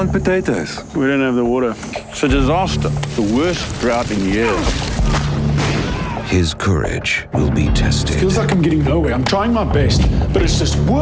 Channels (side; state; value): both; identical; correlation 1.00